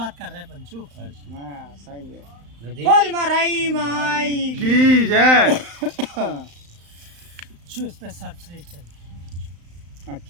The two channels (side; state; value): left; late; 35 ms